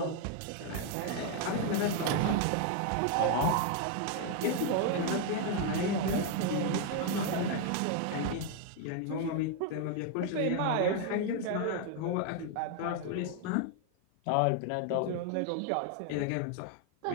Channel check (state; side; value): different; both; correlation 0.01